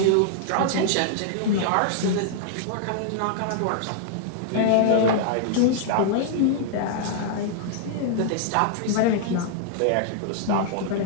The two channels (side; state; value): both; different; correlation -0.01